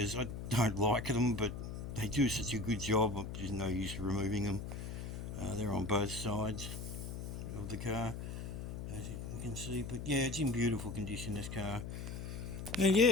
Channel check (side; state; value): left; noise; hum, 6 dB below the sound